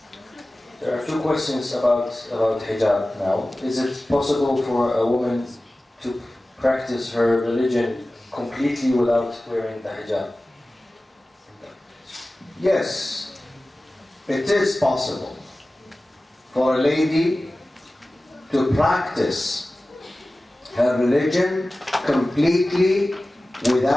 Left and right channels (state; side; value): normal; both; correlation 0.96